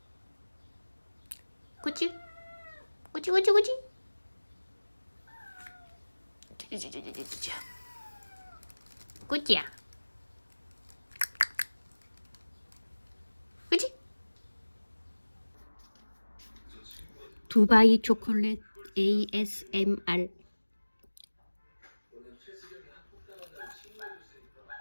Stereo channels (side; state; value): both; inverted; correlation -1.00